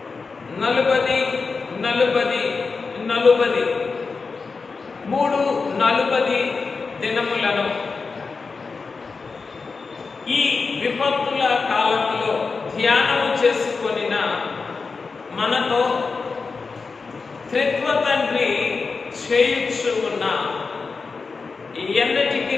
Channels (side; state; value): right; quieter; 4.6 dB